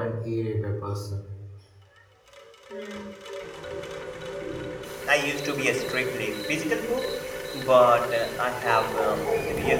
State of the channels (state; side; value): identical; both; correlation 1.00